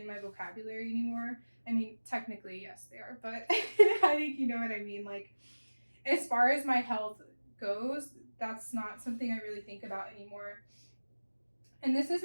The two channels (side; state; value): both; inverted; correlation -1.00